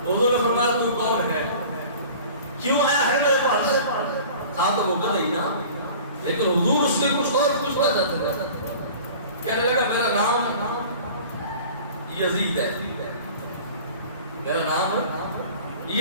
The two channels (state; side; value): inverted; both; correlation -0.43